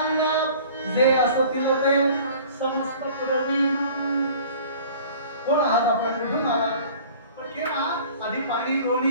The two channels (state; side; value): inverted; both; correlation -0.47